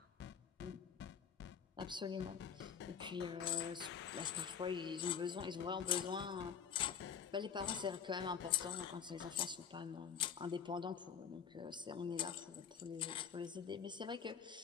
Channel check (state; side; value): quieter; right; 7.4 dB